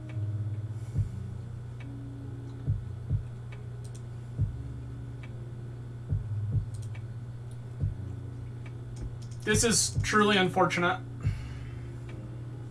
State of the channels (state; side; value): identical; both; correlation 1.00